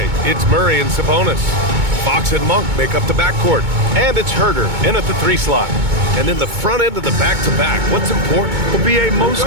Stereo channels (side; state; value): left; late; 2.2 ms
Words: it's Murray and Sabonis. Fox and Monk make up the backcourt. And it's Herder in at the 3 slot. And in the front end of the back-to-back, what's important? Well, B.A., most